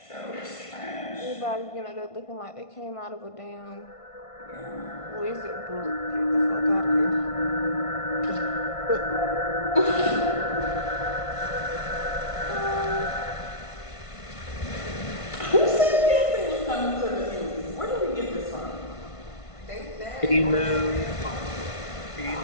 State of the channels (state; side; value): late; right; 1.5 ms